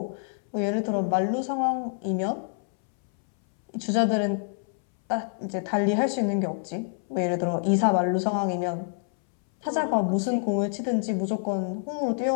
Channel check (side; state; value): right; silent; 60 dB below the other